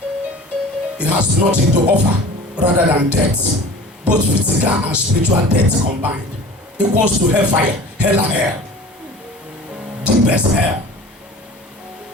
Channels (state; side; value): normal; both; correlation 0.41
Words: It has nothing to offer rather than death. Both physical and spiritual death combined. Equals to hellfire, hell and hell. Deepest hell.